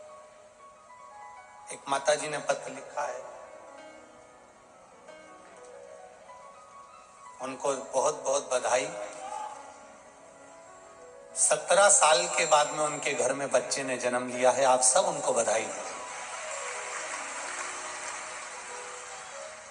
एक माता जी ने पत्र लिखा है, उनको बहुत बहुत बधाई। 17 साल के बाद में उनके घर में बच्चे ने जन्म लिया है, आप सब उनको बधाई दें।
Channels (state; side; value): identical; both; correlation 1.00